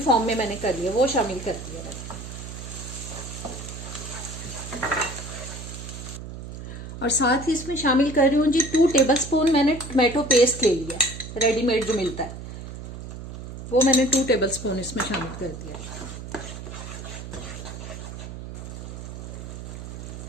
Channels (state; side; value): noise; right; hum, 10 dB below the sound